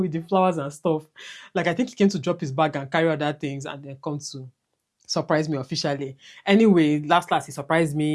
the flowers and stuff. Like I think he came to drop his bag and carry other things and then come to surprise me officially. Anyway, last he surprised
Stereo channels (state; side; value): identical; both; correlation 1.00